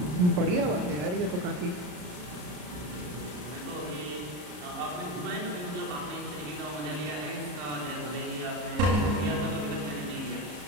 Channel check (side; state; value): left; late; 33 ms